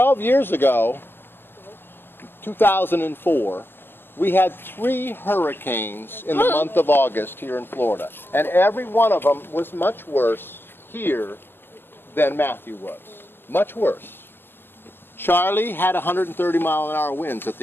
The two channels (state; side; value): late; right; 0.10 ms